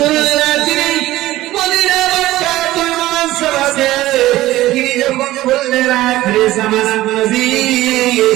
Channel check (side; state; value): left; quieter; 16.2 dB